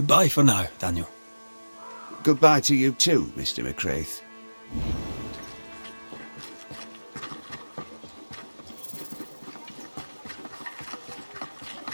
for now, Daniel. Goodbye to you too, Mr. McWraith.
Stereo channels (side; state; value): both; inverted; correlation -1.00